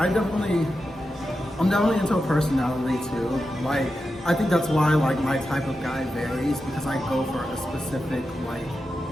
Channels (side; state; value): both; normal; correlation 0.90